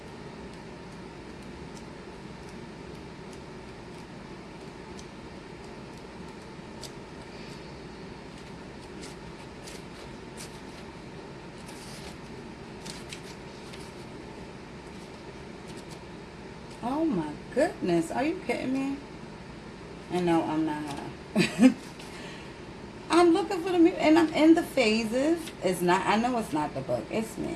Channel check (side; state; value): both; identical; correlation 1.00